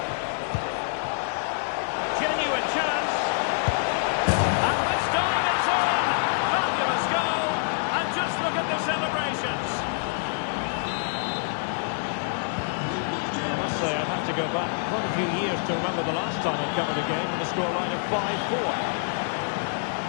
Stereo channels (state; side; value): silent; right; 61 dB below the other